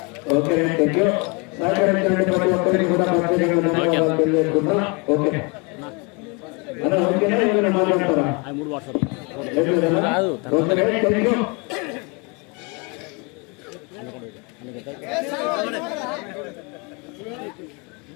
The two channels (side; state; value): right; quieter; 30.7 dB